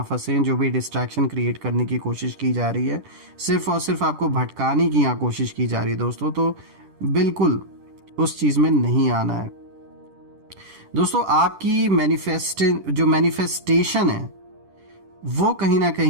फंसें। जो भी डिस्ट्रैक्शन क्रिएट करने की कोशिश की जा रही है, सिर्फ और सिर्फ आपको भटकाने की यहाँ कोशिश की जा रही है दोस्तों, तो बिल्कुल उस चीज़ में नहीं आना है। दोस्तों आपकी मैनिफेस्टेशन है वो कहीं ना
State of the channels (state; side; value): late; left; 10 ms